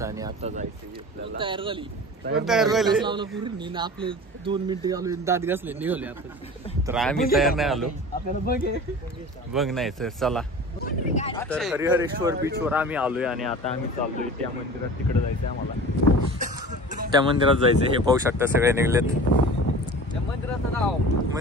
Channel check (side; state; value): both; normal; correlation 0.38